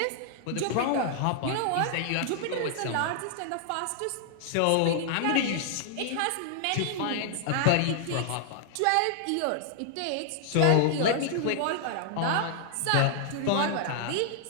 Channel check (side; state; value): both; different; correlation -0.01